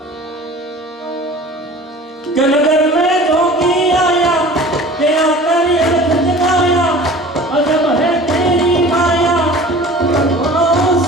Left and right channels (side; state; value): both; normal; correlation 0.43